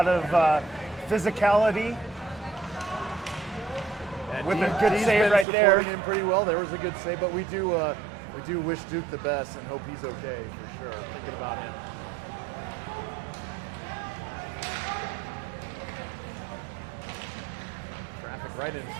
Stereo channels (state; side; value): drops out; left; at 5.5 s